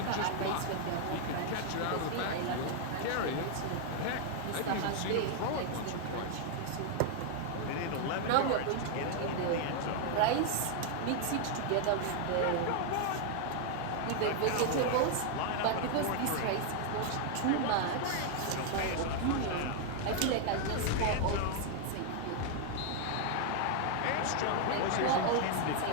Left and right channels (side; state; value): both; different; correlation 0.00